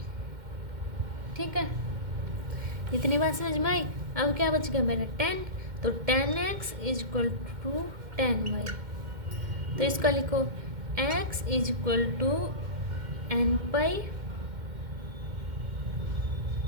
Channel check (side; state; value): left; late; 2.1 ms